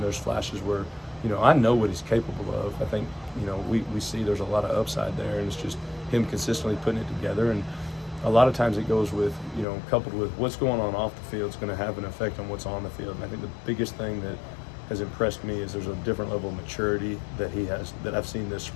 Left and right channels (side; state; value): right; drops out; at 9.7 s